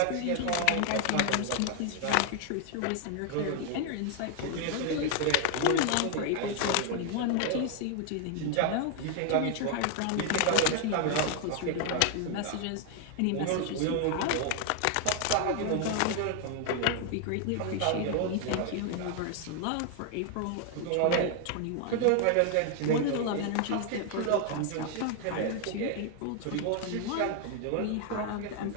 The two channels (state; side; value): different; both; correlation 0.00